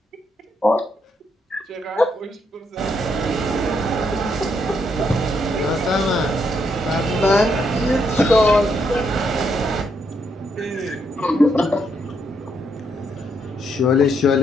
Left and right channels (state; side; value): normal; both; correlation 0.76